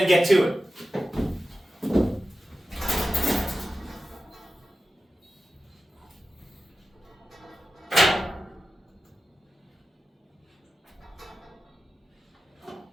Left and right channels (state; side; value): normal; both; correlation 0.93